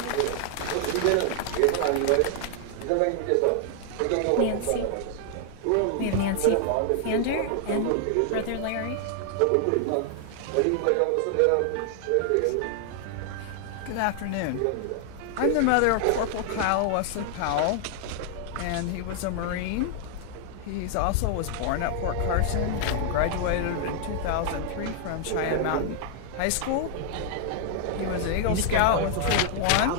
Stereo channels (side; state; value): both; different; correlation 0.00